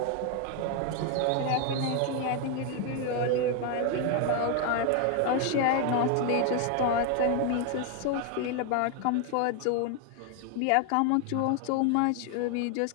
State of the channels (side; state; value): both; different; correlation 0.01